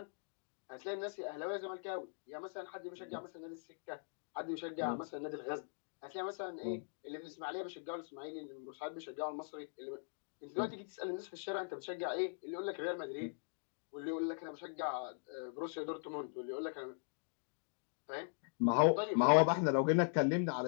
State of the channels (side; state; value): right; silent; digital silence